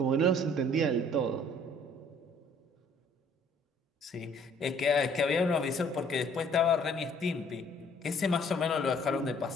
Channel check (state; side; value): normal; both; correlation 0.58